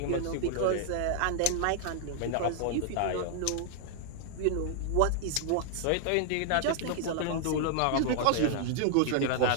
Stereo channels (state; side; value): different; both; correlation 0.00